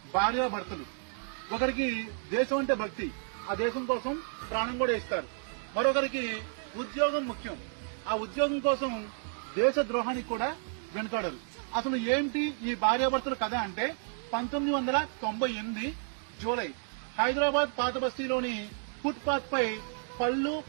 భార్యాభర్తలు. ఒకరికి దేశం అంటే భక్తి, ఆ దేశం కోసం ప్రాణం కూడా ఇస్తారు. మరొకరికి ఉద్యోగం ముఖ్యం, ఆ ఉద్యోగం కోసం దేశ ద్రోహానికి కూడా వెనుకాడరు. అసలు ఏంటి ఈ భార్యాభర్తల కథ అంటే 1998 జూలై హైదరాబాద్ పాత బస్తీలోని ఫుట్ పాత్ పై పళ్ళు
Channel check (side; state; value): left; silent; 57 dB below the other